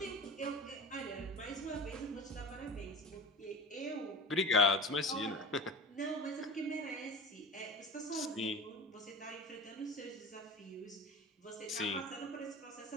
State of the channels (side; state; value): both; normal; correlation 0.32